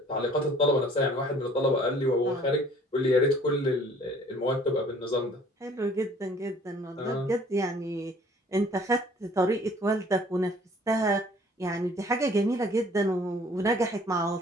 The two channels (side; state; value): both; normal; correlation 0.55